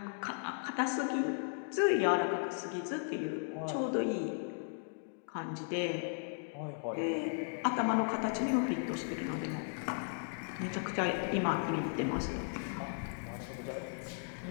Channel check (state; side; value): silent; right; digital silence